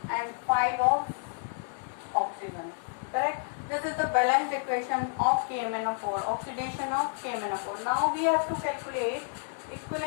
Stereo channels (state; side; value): silent; right; 57 dB below the other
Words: and 5 of oxygen. Correct? This is the balanced equation of KMnO4, oxidation of KMnO4. Now we have to calculate